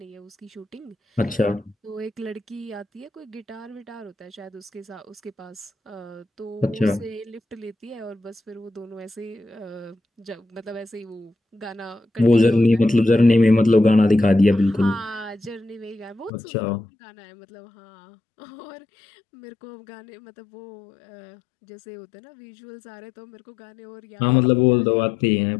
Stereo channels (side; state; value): right; drops out; at 16.3 s